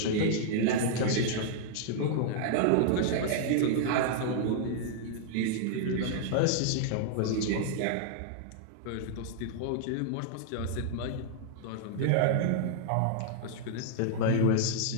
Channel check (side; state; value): both; different; correlation -0.01